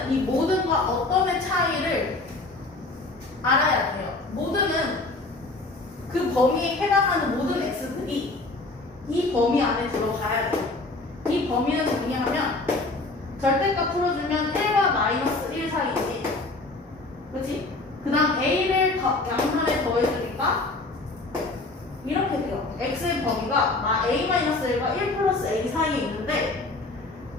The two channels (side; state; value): right; quieter; 3.2 dB